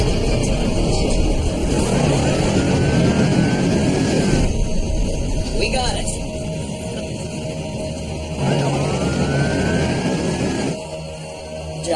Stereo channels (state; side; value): identical; both; correlation 1.00